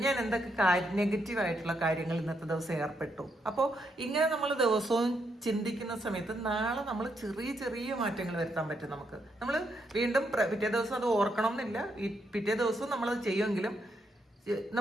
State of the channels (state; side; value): normal; both; correlation 0.78